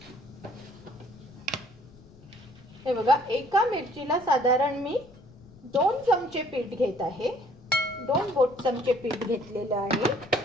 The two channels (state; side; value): noise; left; rumble, 24 dB below the sound